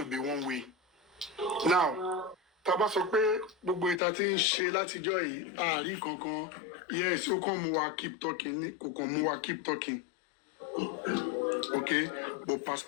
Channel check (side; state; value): right; drops out; at 4.0 s